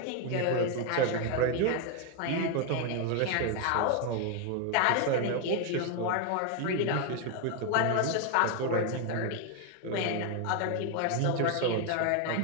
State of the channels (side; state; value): both; different; correlation 0.01